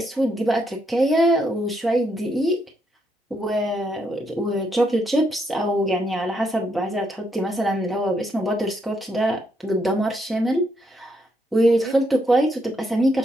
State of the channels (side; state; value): both; normal; correlation 0.77